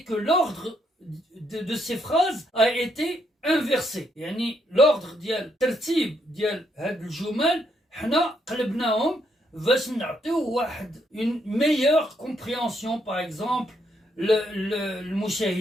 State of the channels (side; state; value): both; normal; correlation 0.75